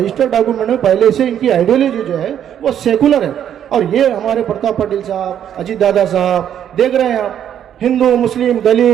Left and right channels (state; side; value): quieter; left; 9.7 dB